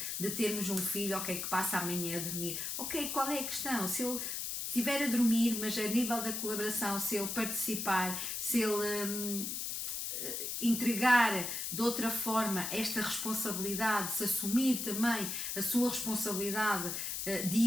de termos um filho, ok, que passa amanhã a dormir, ok, qual é a questão? Se ele estiver a dormir, mas a nível da colaboração, se ele participar, se ele entregar de outra forma esta responsabilidade, se assumir também a sua responsabilidade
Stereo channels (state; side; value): noise; left; hiss, 3 dB below the sound